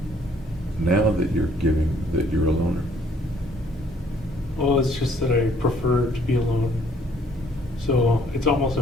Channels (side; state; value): both; normal; correlation 0.62